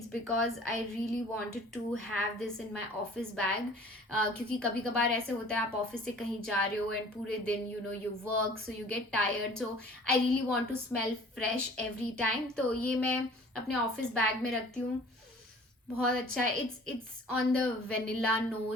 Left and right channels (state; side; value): normal; both; correlation 0.49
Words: because I really wanted to have this in my office bag, क्योंकि कभी कभार ऐसे होता है आप ऑफिस से कहीं जा रहे हो एंड पूरे दिन you work, so you get tired, so I really want to smell fresh every time. तो ये मैं अपने ऑफिस बैग में रखती हूँ. बहुत अच्छा है. It's on the vanilla